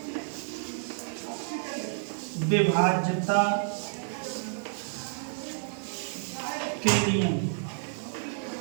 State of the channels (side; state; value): left; silent; digital silence